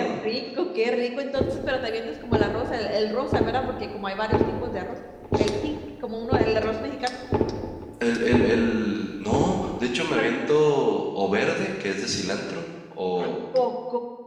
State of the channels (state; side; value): identical; both; correlation 1.00